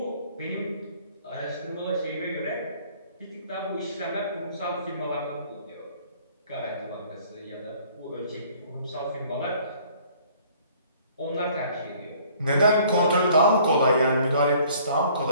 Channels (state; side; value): inverted; both; correlation -0.56